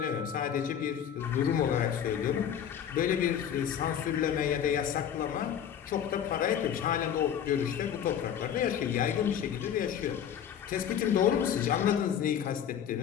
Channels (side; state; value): right; quieter; 9.0 dB